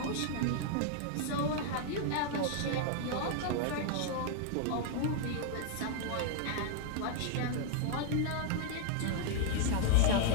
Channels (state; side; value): different; both; correlation 0.00